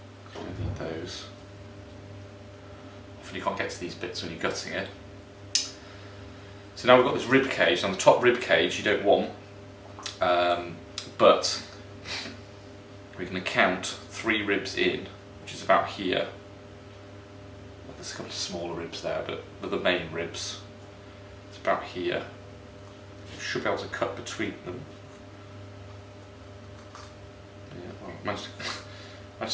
don't need those. Often you can't get to these bits when you're gutting it. So now we've got this rib cage. Now the top rib cage you don't want, but we're going to count 3 ribs in, which is about here. There's a couple of smaller ribs there, but they're the main ribs. It's about here. You should be able to cut between them. Yeah, well, managed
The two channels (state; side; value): identical; both; correlation 1.00